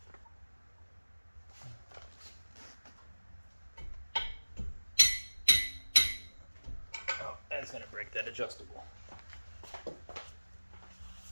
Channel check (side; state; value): both; inverted; correlation -1.00